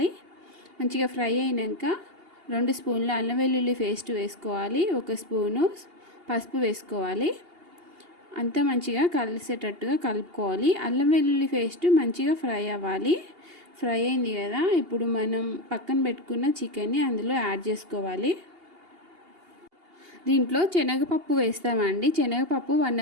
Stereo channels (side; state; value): left; late; 2.8 ms